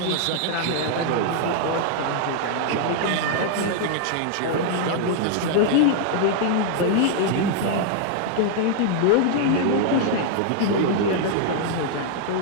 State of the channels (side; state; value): both; different; correlation 0.00